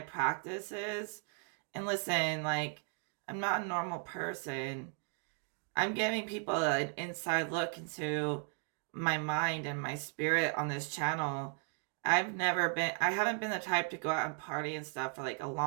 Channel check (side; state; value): left; quieter; 38.0 dB